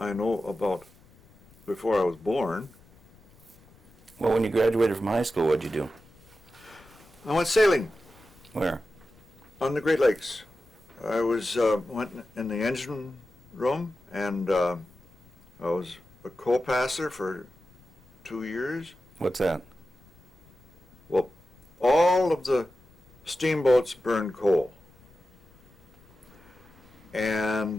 I know about before I was born. Well, when you graduated from high school, what'd you do? I went sailing Where? on the Great Lakes. I went in the engine room, and I was a co-passer for 2 years. What's that? Well, all of the steamboats burned coal,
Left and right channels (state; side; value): noise; left; rumble, 28 dB below the sound